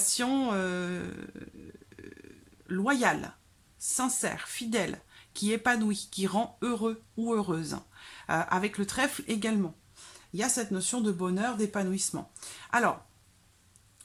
loyale, sincère, fidèle, qui épanouit, qui rend heureux ou heureuse. Avec le trèfle également. Il y a cette notion de bonheur, d'épanouissement. Alors,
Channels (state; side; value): identical; both; correlation 1.00